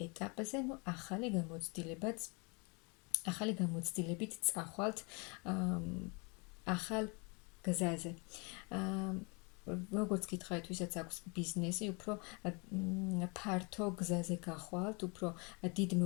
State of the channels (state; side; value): quieter; right; 31.5 dB